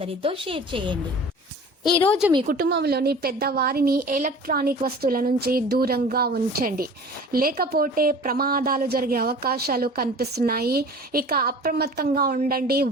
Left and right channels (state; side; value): normal; both; correlation 0.42